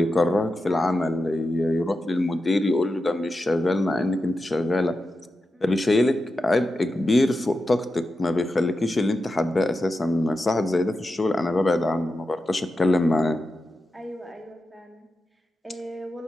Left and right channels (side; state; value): both; normal; correlation 0.90